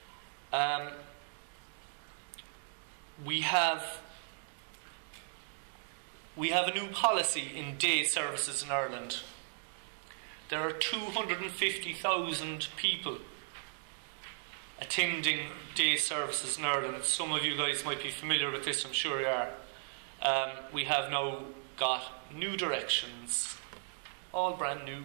We have a new policy in day services in Ireland. There are 250,000 people attending day services in Ireland. Some of you guys might be familiar with this, I'm sure you are. We have now got new directions, all brand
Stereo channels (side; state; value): left; silent; digital silence